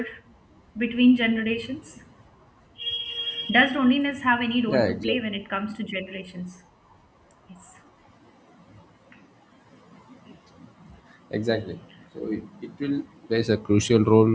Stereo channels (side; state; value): both; identical; correlation 1.00